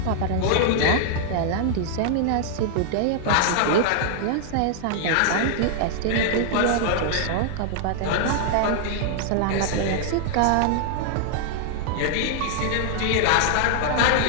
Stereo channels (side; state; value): both; different; correlation -0.01